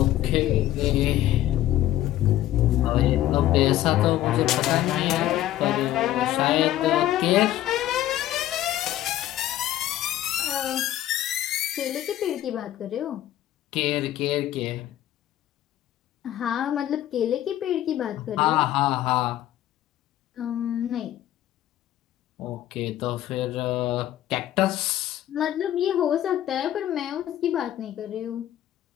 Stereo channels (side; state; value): right; quieter; 13.3 dB